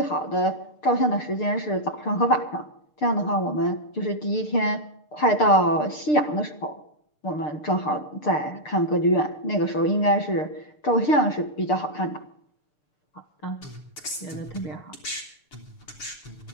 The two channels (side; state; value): right; late; 6.9 ms